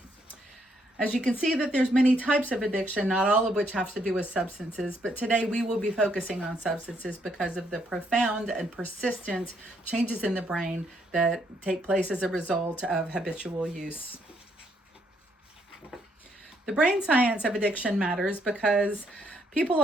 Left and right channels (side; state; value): both; normal; correlation 0.72